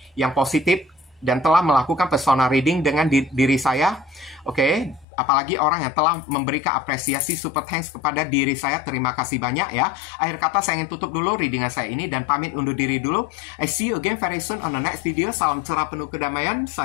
yang positif, dan telah melakukan personal reading dengan diri saya. Oke. Apalagi orang yang telah memberikan apresiasi super thanks kepada diri saya. Terima kasih banyak ya. Akhir kata saya ingin tutup dulu readingan saya ini dan pamit undur diri dulu. I see you again very soon on the next video. Salam cerah penuh kedamaian.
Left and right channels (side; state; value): right; drops out; at 5.1 s